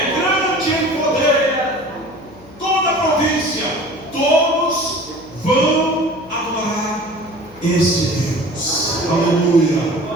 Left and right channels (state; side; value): noise; left; hum, 24 dB below the sound